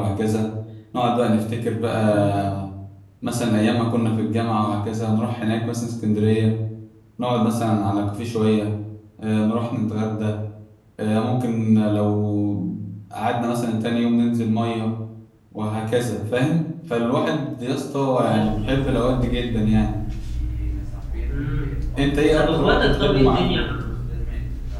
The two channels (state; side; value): identical; both; correlation 1.00